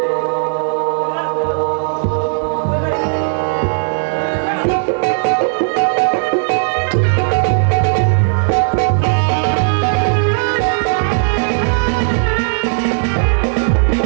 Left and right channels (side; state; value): left; silent; digital silence